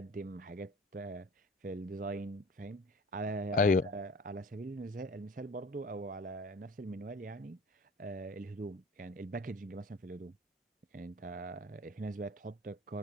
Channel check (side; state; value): both; normal; correlation 0.45